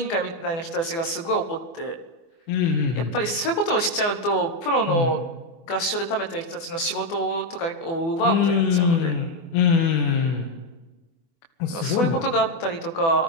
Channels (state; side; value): late; right; 24 ms